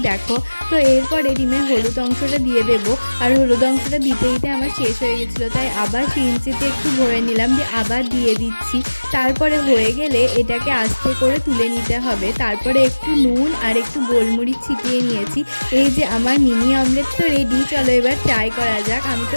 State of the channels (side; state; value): both; inverted; correlation -1.00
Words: দেখো। তো এরপরে ডিমের হলুদ অংশটা দিয়ে দেবো। আর হলুদ অংশটা দিতে দিতে আমার শেষ হয়ে গেছিলো, তাই আবার সিরিঞ্জিতে একটু ভরে নিলাম, দিয়ে আবার দিয়ে দিচ্ছি। তারপরে হয়ে গেলে এটাকে আস্তে করে তুলে নিতে হবে। তারপরে একটু নুন আর একটু গোলমরিচ ছিটিয়ে নিয়েছি। এই যে আমার মিনি অমলেট তো রেডি। চলো এবার ট্রাই করা যাক। আমি